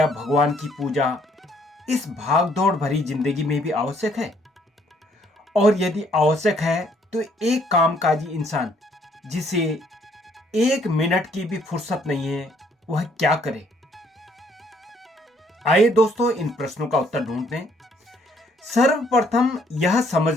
भगवान की पूजा इस भागदौड़ भरी जिंदगी में भी आवश्यक है? और यदि आवश्यक है तो एक कामकाजी इंसान जिसे 1 मिनट की भी फुर्सत नहीं है, वह क्या करे? आइए दोस्तों, इन प्रश्नों का उत्तर ढूंढते हैं। सर्वप्रथम यह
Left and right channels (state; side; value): normal; both; correlation 0.66